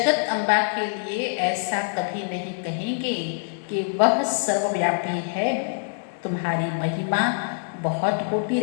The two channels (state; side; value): silent; right; digital silence